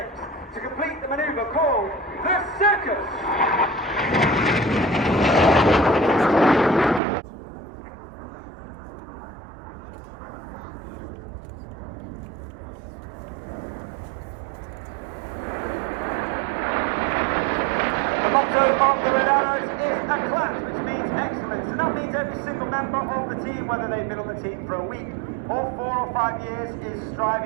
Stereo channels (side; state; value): left; drops out; at 7.0 s